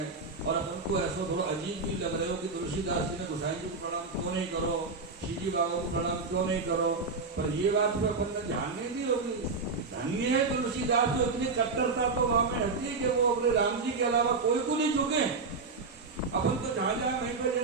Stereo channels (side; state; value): left; quieter; 4.2 dB